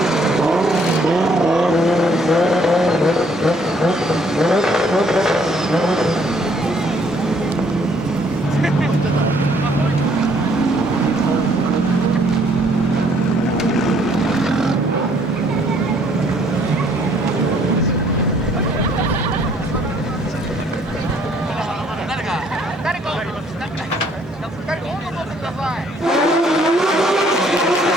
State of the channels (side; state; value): both; normal; correlation 0.64